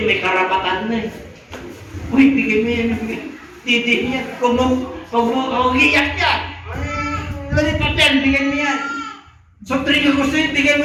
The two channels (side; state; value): both; identical; correlation 1.00